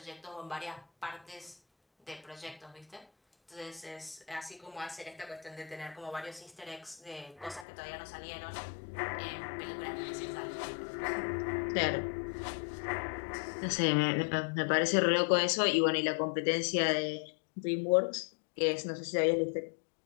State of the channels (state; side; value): drops out; right; at 7.7 s